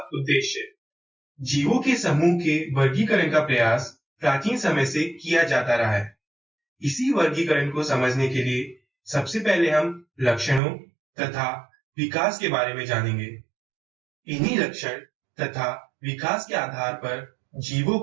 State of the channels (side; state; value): left; drops out; at 10.6 s